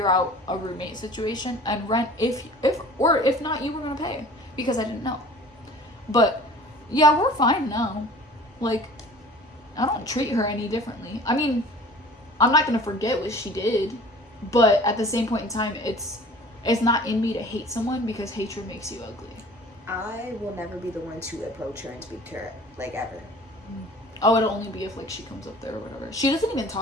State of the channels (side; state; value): both; normal; correlation 0.45